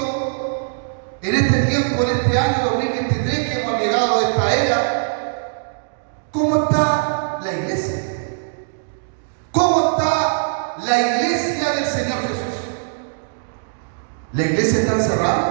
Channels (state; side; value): silent; left; digital silence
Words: en este tiempo, en este año 2023 que hemos llegado a esta era. ¿Cómo está la iglesia? ¿Cómo está la iglesia del Señor Jesús? ¿La iglesia está